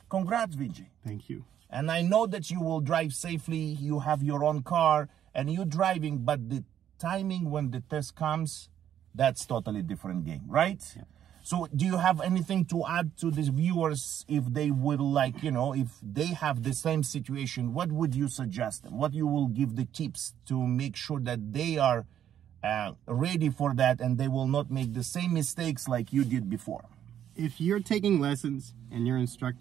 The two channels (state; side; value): quieter; left; 10.2 dB